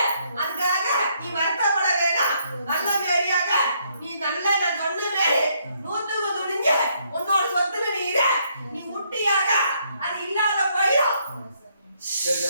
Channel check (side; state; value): both; inverted; correlation -0.71